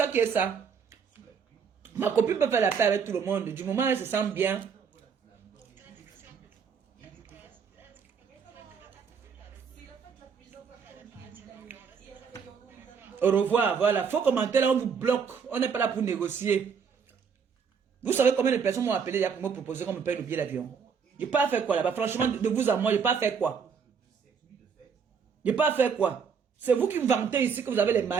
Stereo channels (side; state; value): left; quieter; 6.4 dB